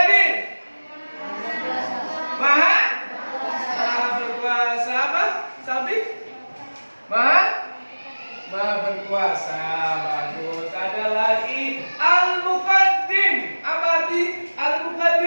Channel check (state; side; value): inverted; both; correlation -1.00